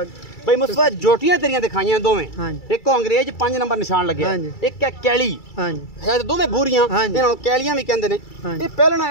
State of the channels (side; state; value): right; late; 2.3 ms